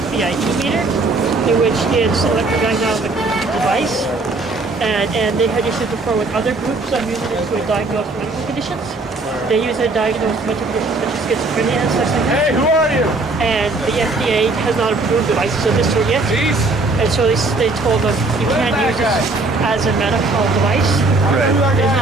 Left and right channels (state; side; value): quieter; left; 3.3 dB